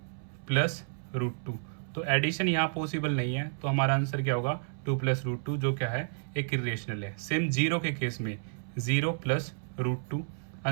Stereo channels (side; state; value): left; silent; 57 dB below the other